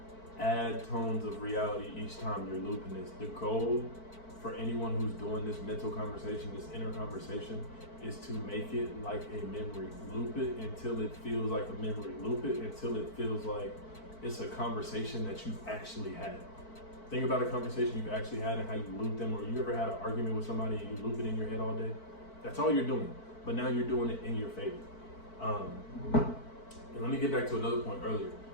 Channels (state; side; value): late; right; 4.5 ms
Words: Add tones of reality each time you're looping this. The goal for anyone who's doing this mental conversation, this inner conversation, is to make it like a memory. Loop it until it feels like a memory. Loop it until it feels like it's a conversation that you've actually had. Think about a conversation you've actually had and how you loop them, or you ever had an argument with somebody and you loop it in your head all day? That's all you're doing, but now you're doing it in your favor. And let me get back to another point earlier